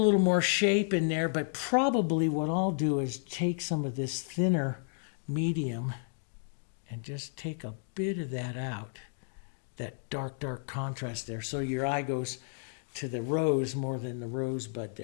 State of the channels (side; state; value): right; silent; digital silence